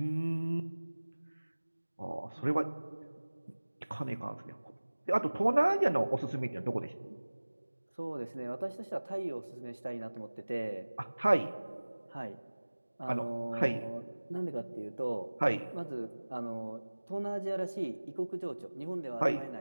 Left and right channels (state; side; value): inverted; both; correlation -1.00